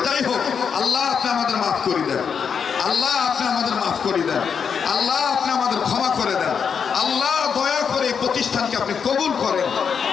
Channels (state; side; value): quieter; right; 6.7 dB